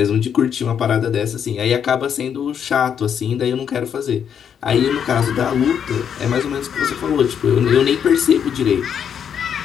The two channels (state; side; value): quieter; right; 8.1 dB